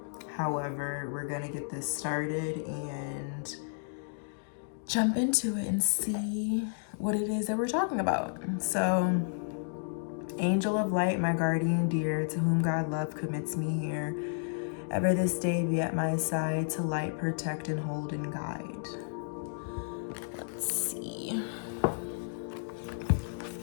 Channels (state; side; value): silent; right; digital silence